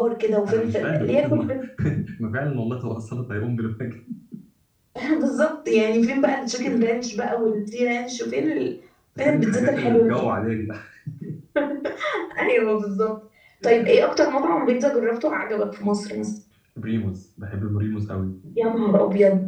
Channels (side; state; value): both; identical; correlation 1.00